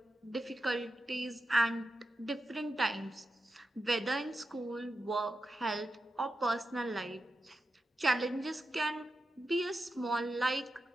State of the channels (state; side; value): normal; both; correlation 0.89